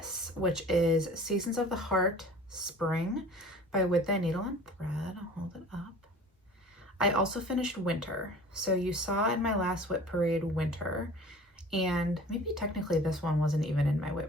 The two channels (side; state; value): both; normal; correlation 0.44